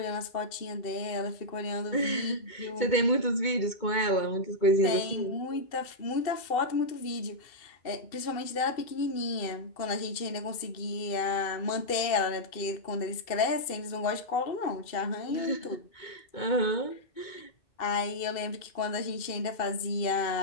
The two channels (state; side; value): late; right; 2.7 ms